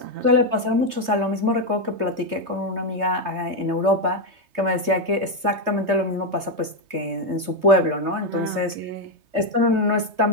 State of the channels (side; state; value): left; late; 3.2 ms